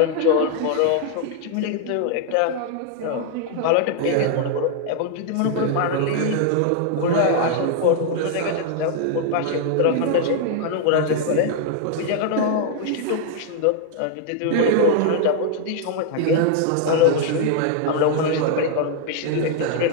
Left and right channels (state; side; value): different; both; correlation 0.00